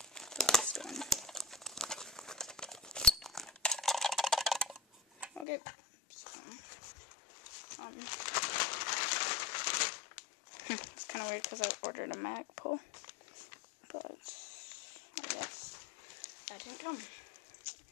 the last one. Okay. So, it's kind of weird because I ordered a mag pull, but I guess that didn't come.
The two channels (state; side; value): drops out; right; at 5.5 s